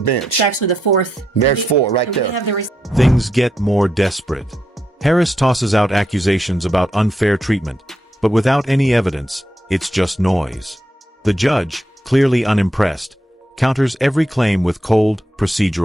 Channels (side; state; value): both; normal; correlation 0.81